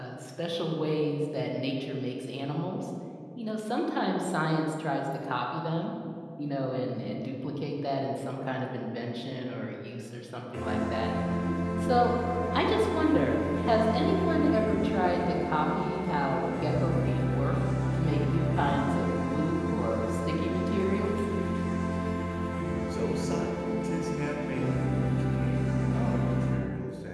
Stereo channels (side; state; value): both; identical; correlation 1.00